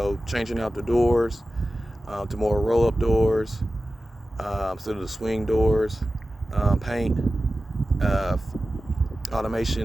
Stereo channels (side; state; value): both; normal; correlation 0.94